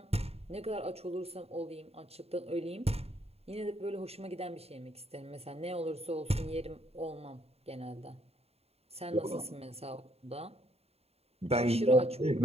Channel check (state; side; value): late; left; 0.29 ms